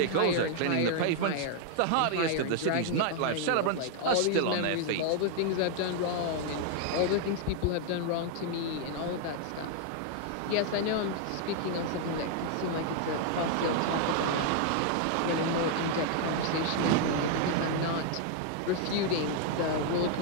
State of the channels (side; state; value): both; different; correlation 0.00